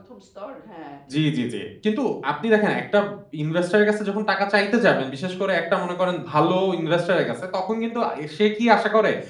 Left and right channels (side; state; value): both; identical; correlation 1.00